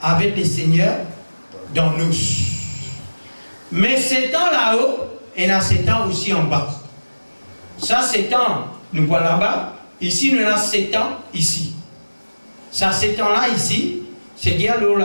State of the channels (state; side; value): inverted; both; correlation -1.00